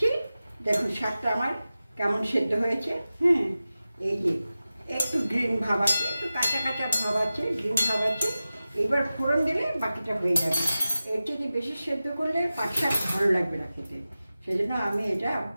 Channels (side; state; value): both; inverted; correlation -0.95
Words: দেখুন শাকটা আমার কেমন সেদ্ধ হয়েছে। হ্যাঁ, এই যে একটু গ্রিন ভাব আছে, একটু কাঁচা ভাব আছে, গ্রিন ভাব আছে। এবার ফোড়ন দিলে বাকিটা হয়ে যাবে। এর থেকে বেশি সেদ্ধ করলে পাট শাক ভালো লাগবে না খেতে, সেই জন্য আমি এটা